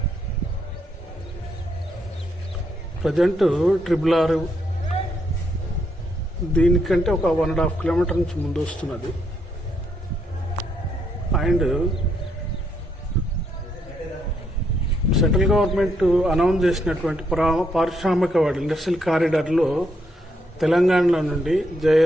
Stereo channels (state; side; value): normal; both; correlation 0.76